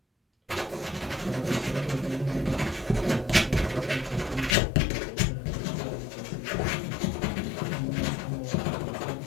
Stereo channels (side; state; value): right; drops out; at 4.5 s